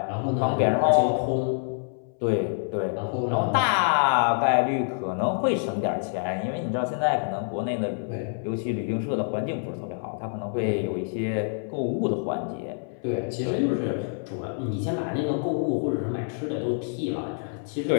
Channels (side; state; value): right; silent; 60 dB below the other